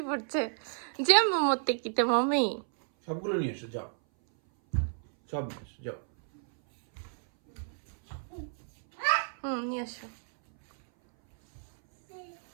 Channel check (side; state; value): left; silent; 57 dB below the other